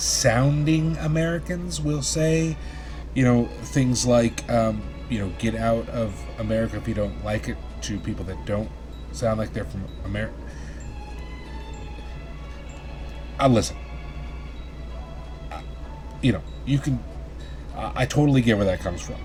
Americans will say, things like, get out of America if you don't like it, to people that don't sound like they're from America. Listen, you can, I totally get where that comes from.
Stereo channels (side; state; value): both; identical; correlation 1.00